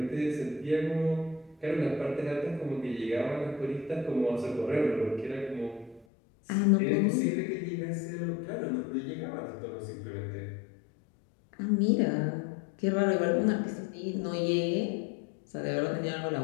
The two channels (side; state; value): right; drops out; at 6.1 s